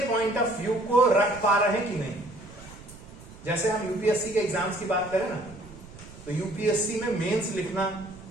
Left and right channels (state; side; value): noise; right; rumble, 18 dB below the sound